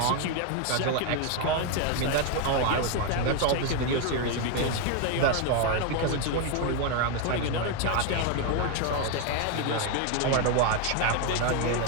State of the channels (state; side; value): different; both; correlation 0.01